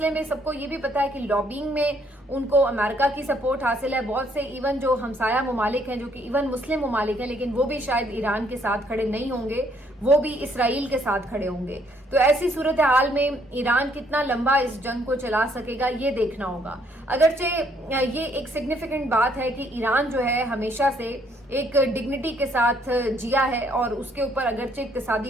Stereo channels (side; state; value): both; normal; correlation 0.67